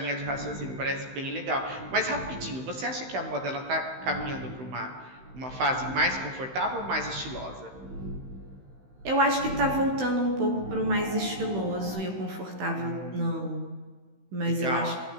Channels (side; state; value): left; late; 16 ms